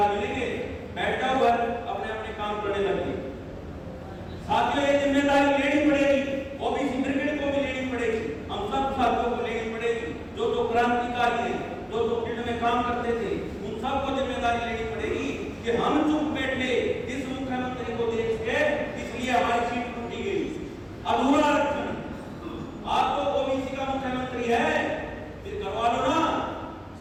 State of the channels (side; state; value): both; identical; correlation 1.00